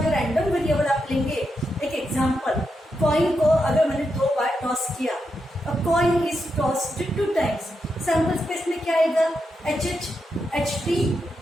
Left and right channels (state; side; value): normal; both; correlation 0.85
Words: रैंडम वेरिएबल आप लेंगे। एक एग्जांपल, कॉइन को अगर मैंने 2 बार टॉस किया, अ coin is tossed 2 times, sample space में क्या आएगा, HH, HT,